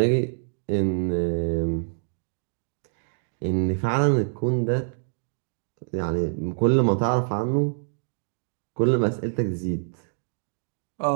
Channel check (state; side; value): silent; left; digital silence